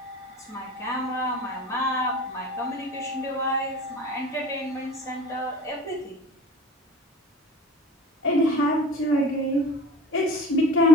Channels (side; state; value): both; normal; correlation 0.38